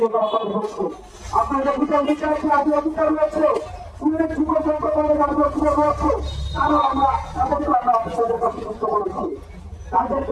কথা বলছে। আপনারা বিচার বিচারছে আদি অধিকার রয়েছে, উল্লেখযোগ্য সংখ্যকের রাজনৈতিক রয়েছে, তারা আমরা তাদেরকে আমরা অফিসারদের কাছে যুক্ত করেছি।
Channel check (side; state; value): both; identical; correlation 1.00